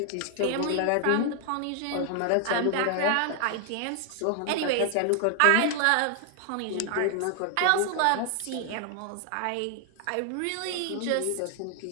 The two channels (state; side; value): different; both; correlation 0.00